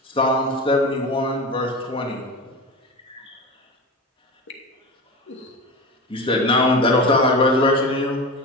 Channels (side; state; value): both; normal; correlation 0.27